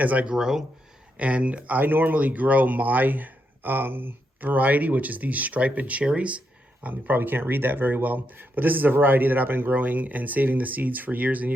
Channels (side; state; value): both; normal; correlation 0.81